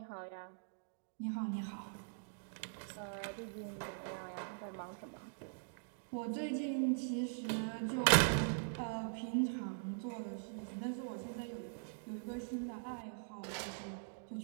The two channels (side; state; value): left; silent; digital silence